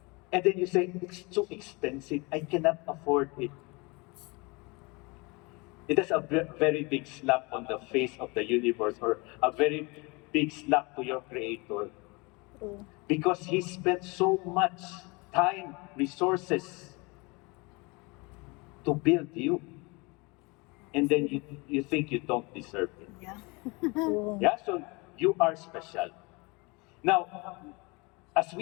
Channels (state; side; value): quieter; right; 27.2 dB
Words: and then you say, it's too expensive, I cannot afford it. It is a very big slap on the face of the universe, or a very big slap to your creator. Because he spent so much time, resources to build you. And then you think you don't deserve it. Yeah. Yeah, so you are special. Now, as